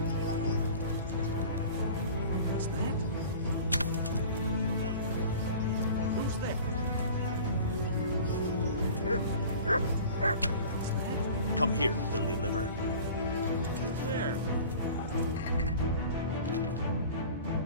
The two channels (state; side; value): inverted; both; correlation -0.42